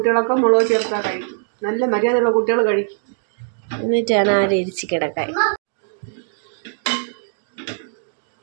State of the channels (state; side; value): silent; left; digital silence